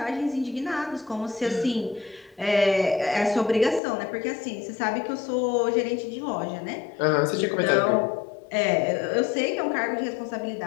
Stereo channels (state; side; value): drops out; right; at 3.8 s